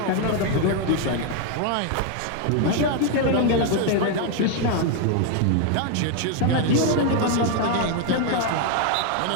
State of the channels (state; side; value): different; both; correlation 0.01